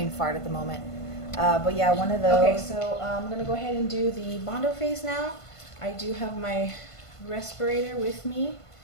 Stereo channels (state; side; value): late; right; 1.5 ms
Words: fart at the moment. But yeah, one of those. Okay, so I'm going to go ahead and do the bondo phase now. I do have my respirator with me.